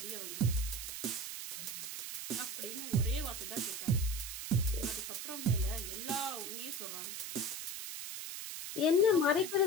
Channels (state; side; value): noise; right; hiss, 6 dB below the sound